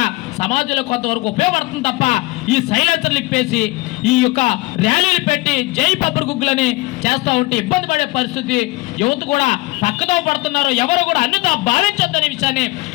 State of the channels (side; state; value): right; quieter; 21.3 dB